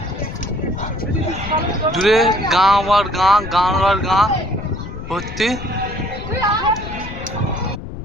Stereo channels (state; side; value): noise; left; rumble, 9 dB below the sound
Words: দূরে গাঁ আর গাঁ, গাঁ আর গাঁ ভর্তি।